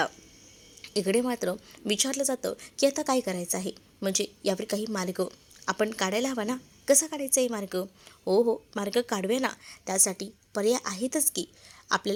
इकडे मात्र विचारलं जातं की आता काय करायचं आहे, म्हणजे यावर काही मार्ग आपण काढायला हवा ना. कसा काढायचा आहे मार्ग? हो, मार्ग काढूया ना. त्यासाठी पर्याय आहेतच की,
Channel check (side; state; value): both; identical; correlation 1.00